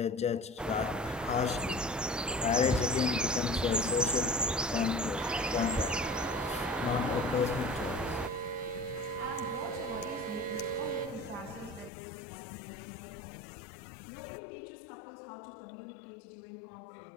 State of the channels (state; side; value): drops out; right; at 11.9 s